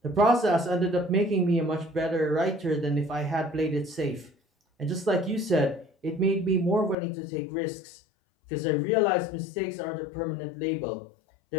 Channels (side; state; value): right; drops out; at 7.0 s